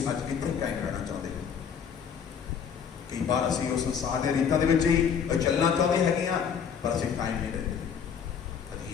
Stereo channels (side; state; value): right; quieter; 7.3 dB